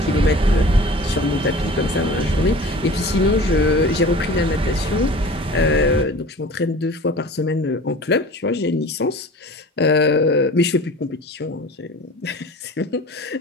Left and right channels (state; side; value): normal; both; correlation 0.41